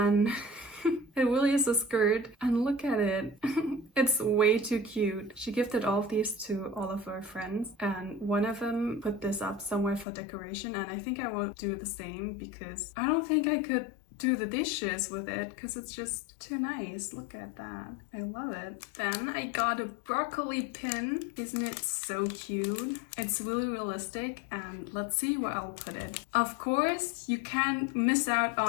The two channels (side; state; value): right; drops out; at 10.1 s